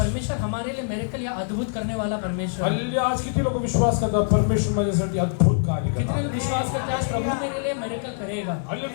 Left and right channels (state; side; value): silent; right; digital silence